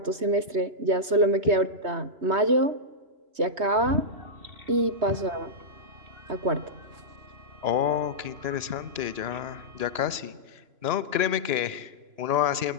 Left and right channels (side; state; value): left; late; 3.0 ms